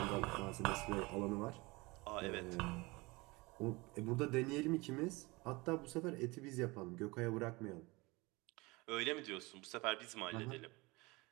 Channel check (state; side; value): quieter; left; 24.0 dB